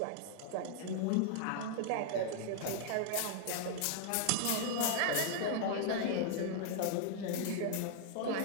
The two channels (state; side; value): different; both; correlation -0.01